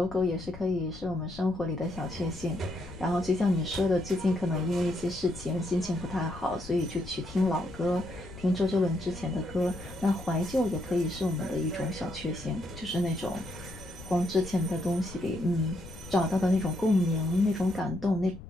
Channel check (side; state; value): left; noise; rumble, 15 dB below the sound